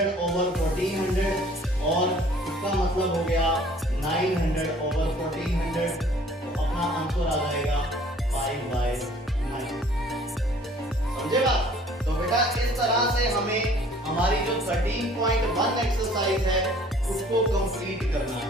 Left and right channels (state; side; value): normal; both; correlation 0.54